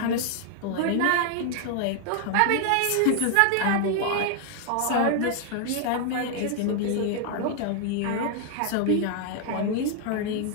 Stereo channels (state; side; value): different; both; correlation 0.00